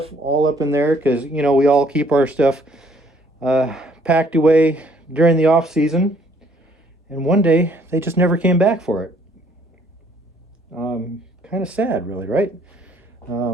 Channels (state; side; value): normal; both; correlation 0.62